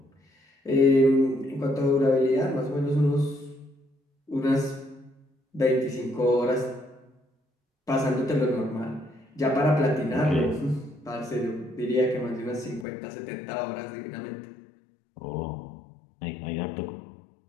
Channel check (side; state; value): right; drops out; at 12.9 s